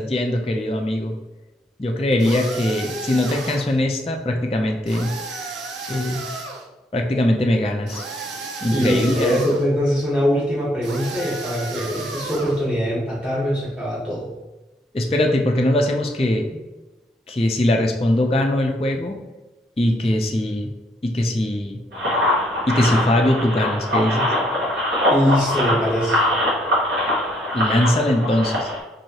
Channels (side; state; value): both; normal; correlation 0.71